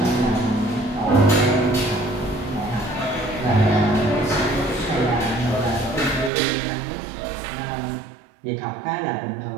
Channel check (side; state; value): left; drops out; at 6.3 s